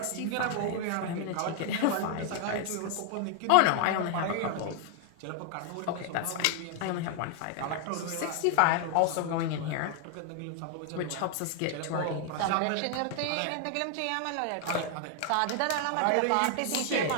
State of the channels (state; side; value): different; both; correlation 0.00